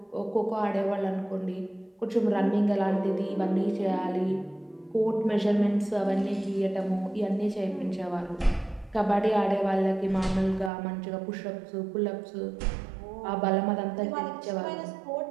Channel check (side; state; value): left; drops out; at 10.7 s